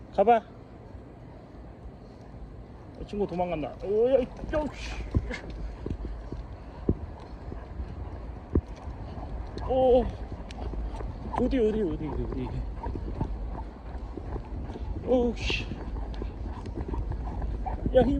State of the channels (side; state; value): both; identical; correlation 1.00